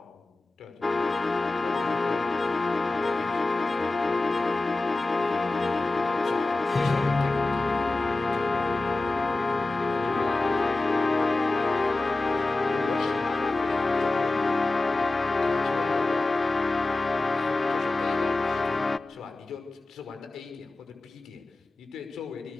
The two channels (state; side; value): quieter; right; 3.1 dB